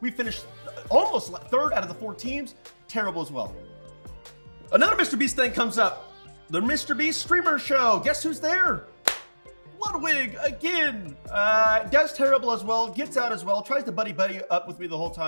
We finished almost third out of the 4 teams. Terrible as well. Another Mr. Beast thing comes up. The Mr. Beast streamer show. Guess who's there? Ludwig again. Does terrible as well. Gets out as well. Tries to buddy up with me the whole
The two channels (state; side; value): inverted; both; correlation -1.00